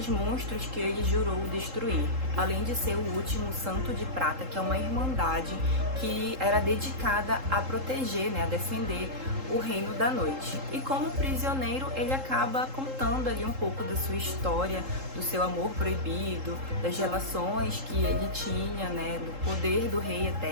monstros que ele jurou destruir, além de ser o último santo de prata, que é uma irmandade que era dedicada a proteger, né, a defender o reino da noite. E como prisioneiro, ele acaba contando ali um pouco da sua história, do seu amor proibido, das relações que ele tinha, né, do poder do rei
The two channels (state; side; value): late; left; 3.7 ms